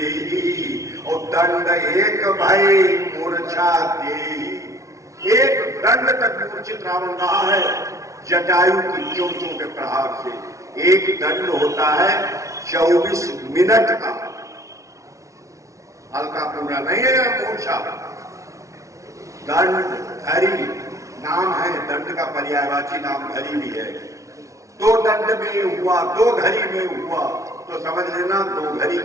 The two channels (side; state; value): left; late; 0.15 ms